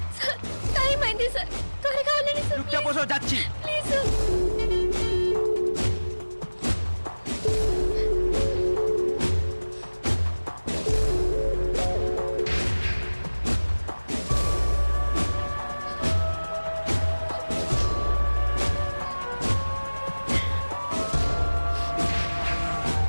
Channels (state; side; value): inverted; both; correlation -1.00